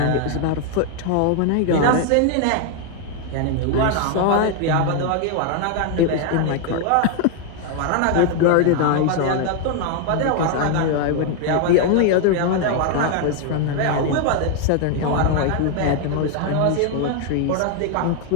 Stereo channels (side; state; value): both; different; correlation 0.00